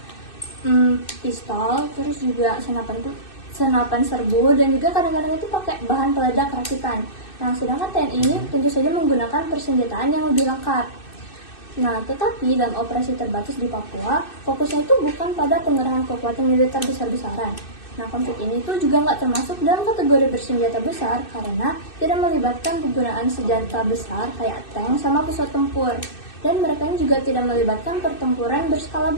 pistol, terus juga senapan serbu, dan juga kadang-kadang itu pakai bahan peledak rakitan. Nah sedangkan TNI ini tentu saja menggunakan persenjataan yang lebih lengkap. Nah, tetapi dalam operasi terbatas di Papua, fokusnya itu bukan pada pengerahan kekuatan militer besar-besaran. Nah, konflik ini tuh juga nggak termasuk dalam kategori bersenjata besar karena tidak melibatkan penggunaan senjata besar kayak tank sama pesawat tempur. Dan mereka ini juga tidak melibatkan pertempuran berskala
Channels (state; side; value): late; right; 2.6 ms